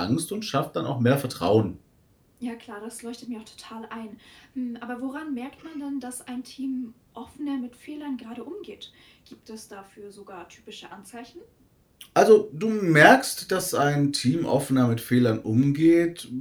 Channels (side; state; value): both; identical; correlation 1.00